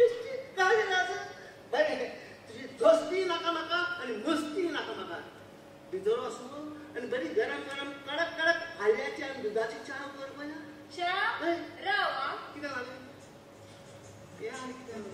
काय नाज बरें तुजी दोस्ती नाका म्हाका आनी मस्ती नाका म्हाका भितर वचून आनी बरी गरम गरम कडक कडक हाल्ल्याची आनी दुदाची च्या कर पळय च्या राव कितें जालें हे आनी कितें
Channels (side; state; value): both; identical; correlation 1.00